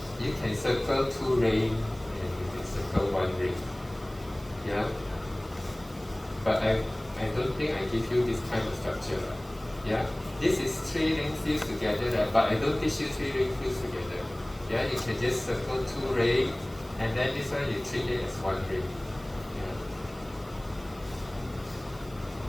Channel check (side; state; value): right; noise; hiss, 24 dB below the sound